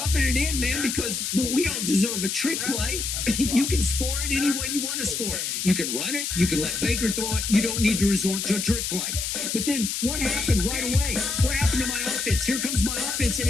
it in, man, because we don't deserve a trick play. You can score it any way you want to score it. You can run it. You can let Baker throw it. You don't need to resort to a trick play. But then what happened right away? What happened to my offense? Here comes my offense, and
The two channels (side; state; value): left; noise; hiss, 2 dB below the sound